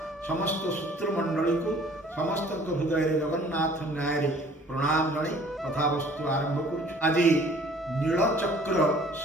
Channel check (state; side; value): normal; both; correlation 0.53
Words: समस्त सूत्रमंडली को समस्त हृदय जगन्नाथ न्याय प्रणाम जन कथावस्तु आरंभ कर। आज नीलचक्र